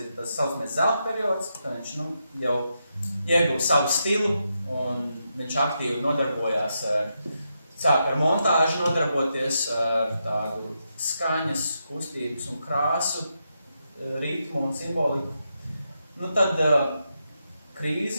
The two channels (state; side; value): inverted; both; correlation -0.84